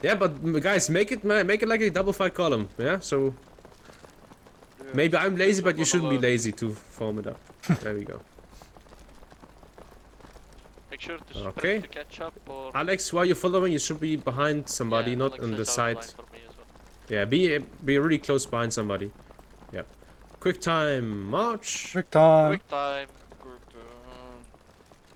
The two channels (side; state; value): both; identical; correlation 1.00